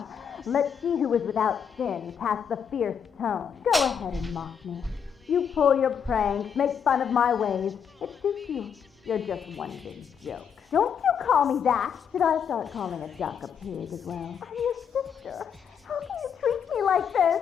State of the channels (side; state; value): right; quieter; 7.5 dB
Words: Let's see who is without sin cast the fierce tone. Go ahead and mock me. You pull your pranks, make fun of my ways. It suits you. You're just one big joke. Don't you call me that. Should I start calling a duck a pig as well? I'm your sister. How can you treat me like this?